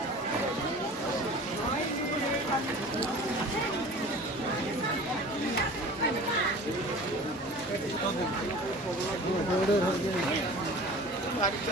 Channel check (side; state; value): both; normal; correlation 0.41